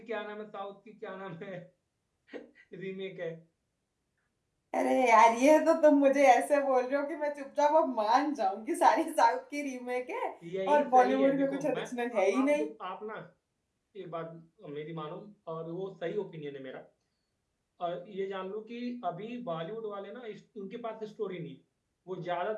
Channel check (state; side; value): identical; both; correlation 1.00